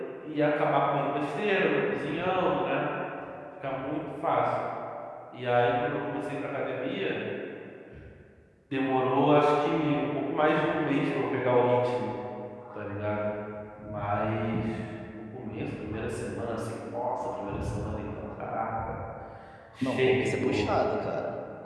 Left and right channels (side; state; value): both; identical; correlation 1.00